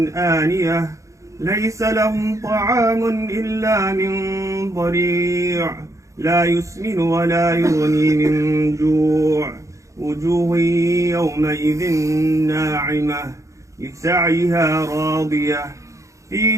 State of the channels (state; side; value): late; left; 0.15 ms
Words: آنية ليس لهم طعام إلا من ضريع لا يسمن ولا يغني من جوع وجوه يومئذ ناعمة لسعيها راضية في